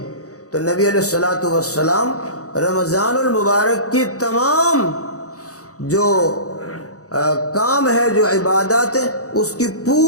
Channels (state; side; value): late; right; 0.66 ms